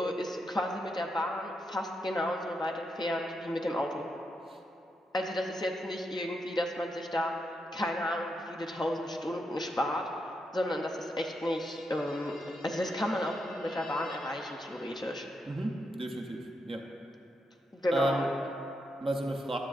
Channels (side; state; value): both; normal; correlation 0.82